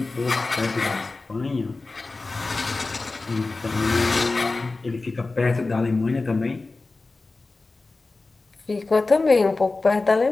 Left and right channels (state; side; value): quieter; right; 3.5 dB